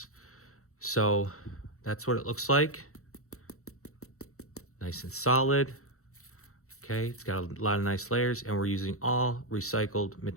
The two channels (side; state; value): right; late; 0.64 ms